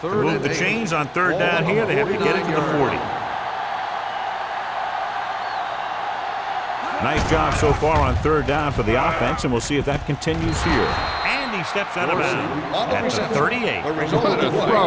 To move the chains on 3rd down here, they have to get it to the 40. Nice job so far on 3rd down for the offense, and we'll see if that continues here. And he steps out of bounds at the 38. What a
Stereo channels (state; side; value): identical; both; correlation 1.00